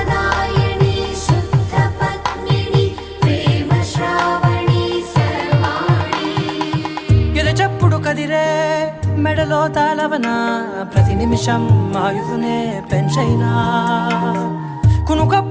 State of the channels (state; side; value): identical; both; correlation 1.00